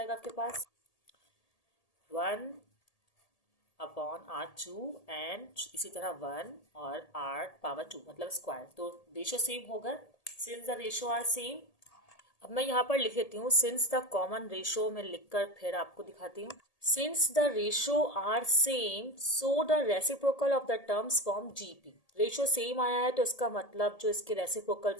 आपके पास 1/R2 एंड इसी तरह 1 और R⁴, मतलब स्क्वायर, तो रेशो सेम होगा, since the ratio are same. अब मैं यहाँ पर लिख देती हूँ सिंस द कॉमन रेशो, में लिखकर फिर आपको दिखाती हूँ। Since the ratio are same so the reciprocal of the terms form GP। Ratio same आया है तो इसका मतलब जो इसके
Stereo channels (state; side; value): late; right; 1.8 ms